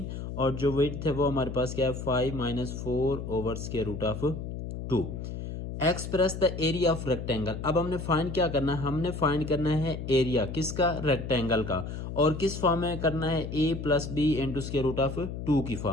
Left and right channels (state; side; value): noise; left; hum, 7 dB below the sound